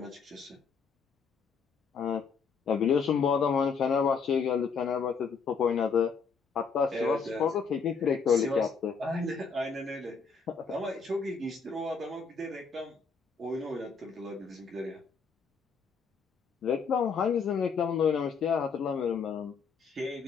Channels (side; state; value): right; quieter; 5.6 dB